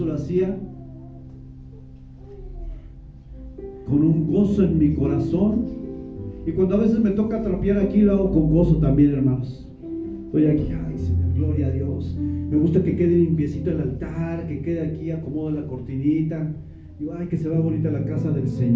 lo hacía con un gozo en mi corazón. Y cuando a veces me toca trapear aquí, lo hago con gozo también, hermanos. Estoy aquí, ay Señor, gloria a Dios. Me gusta que quede limpiecito el altar, que quede aquí, acomodo la cortinita. Digo, ay, que se vea bonita la casa del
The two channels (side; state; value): both; identical; correlation 1.00